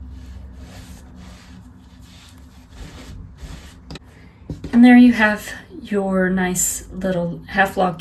And there you have your nice little half log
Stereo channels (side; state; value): both; identical; correlation 1.00